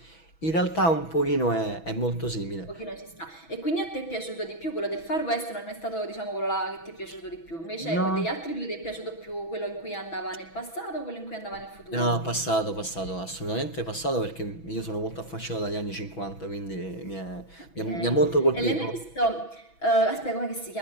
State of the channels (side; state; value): right; late; 6.1 ms